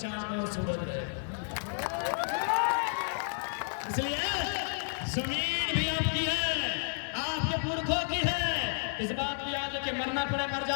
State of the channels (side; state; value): right; silent; digital silence